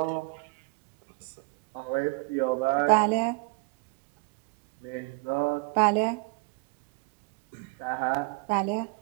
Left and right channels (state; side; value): quieter; left; 28.3 dB